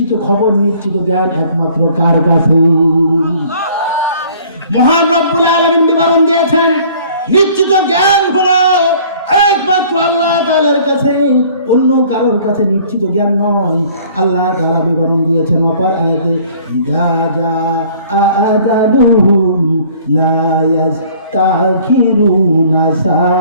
খবর, নিশ্চিত জ্ঞান একমাত্র কার কাছে? মহান রব্বুল আলামিন বিবরণ দিয়েছেন, নিশ্চিত জ্ঞান হলো একমাত্র আল্লাহ তাআলার কাছে, অন্য কারোর কাছে নিশ্চিত জ্ঞান নয়। আল্লাহ তাআলা বিবরণ দিয়েছেন অপর আয়াতে, ইযা জাআ আজালুহুম লা ইস্তাখিরুনা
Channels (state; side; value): inverted; both; correlation -0.54